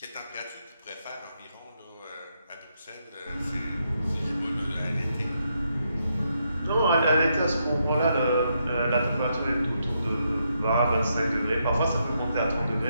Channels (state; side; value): inverted; both; correlation -0.79